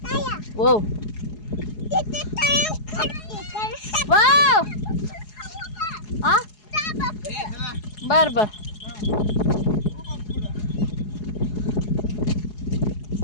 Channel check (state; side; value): late; right; 4.8 ms